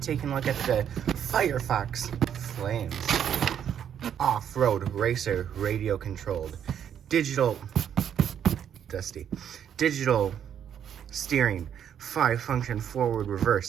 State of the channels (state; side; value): quieter; left; 9.0 dB